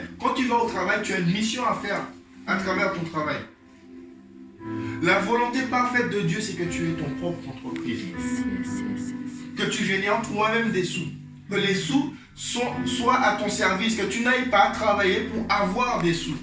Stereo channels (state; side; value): identical; both; correlation 1.00